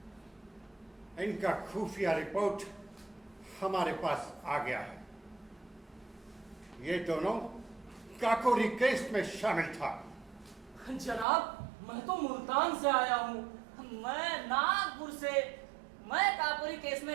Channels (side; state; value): left; drops out; at 11.2 s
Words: इनका खुफिया रिपोर्ट हमारे पास आ गया है। ये दोनों काकोरी केस में शामिल था। जनाब, मैं तो मुल्तान से आया हूँ। मैं नागपुर से। मैं काकोरी केस